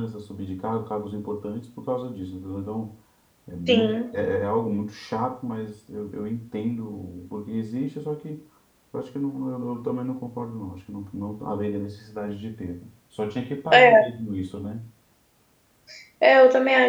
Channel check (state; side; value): identical; both; correlation 1.00